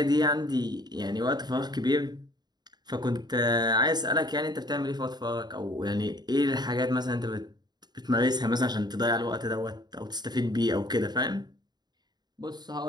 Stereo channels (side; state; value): left; late; 0.20 ms